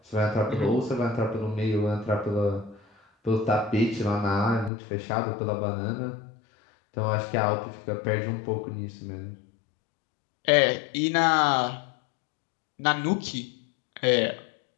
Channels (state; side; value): drops out; right; at 4.7 s